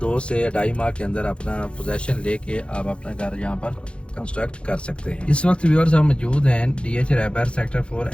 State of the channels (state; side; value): late; right; 0.058 ms